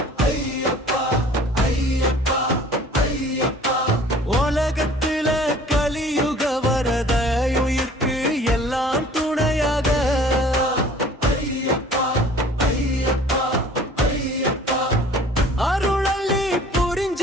ஐயப்பா ஐயப்பா ஐயப்பா உலகத்துல கலியுக வரத உயிர்க்கு எல்லாம் துணையாக ஐயப்பா ஐயப்பா ஐயப்பா அருளள்ளி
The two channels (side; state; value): both; normal; correlation 0.49